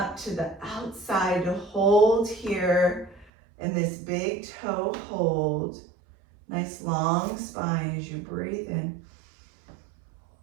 to the outside to hold here in this big toe hold. Nice long spine as you breathe in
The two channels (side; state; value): left; drops out; at 3.2 s